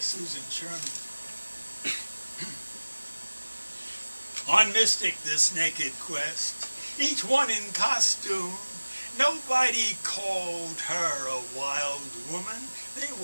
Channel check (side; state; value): both; inverted; correlation -1.00